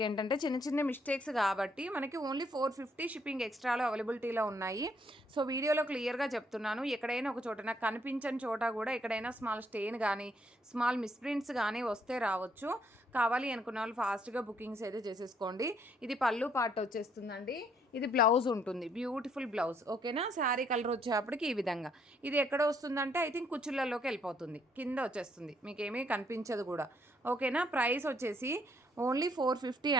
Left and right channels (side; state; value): both; normal; correlation 0.69